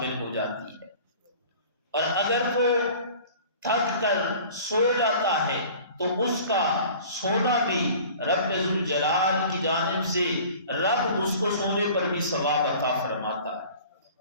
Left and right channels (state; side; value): inverted; both; correlation -0.45